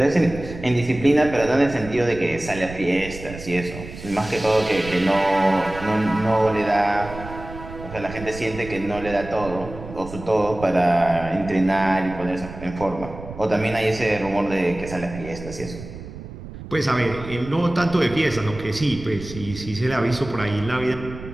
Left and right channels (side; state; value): right; noise; rumble, 13 dB below the sound